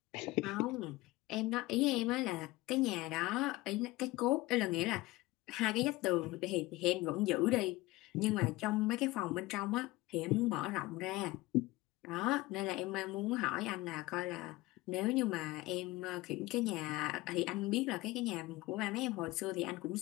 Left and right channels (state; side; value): quieter; right; 19.8 dB